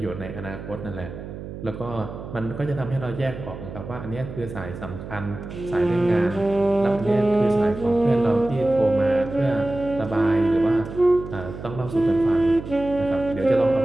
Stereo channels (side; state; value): right; noise; hum, 11 dB below the sound